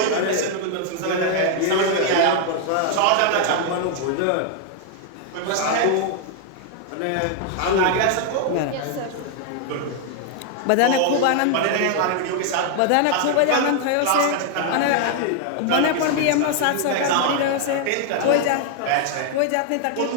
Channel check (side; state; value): both; different; correlation 0.00